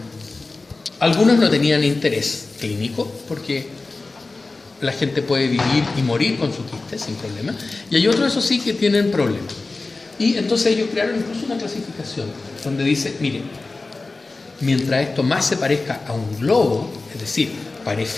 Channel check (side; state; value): right; quieter; 3.5 dB